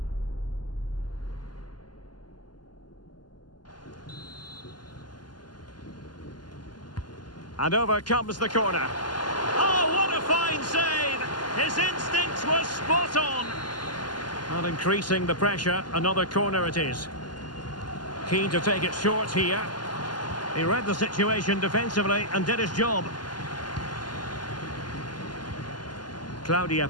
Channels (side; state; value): right; late; 0.71 ms